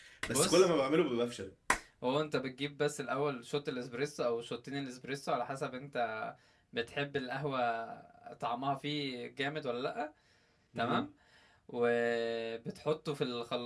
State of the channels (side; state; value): both; identical; correlation 1.00